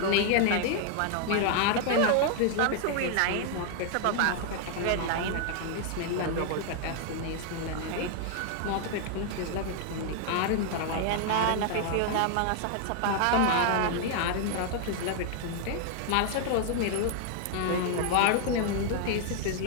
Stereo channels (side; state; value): both; different; correlation 0.00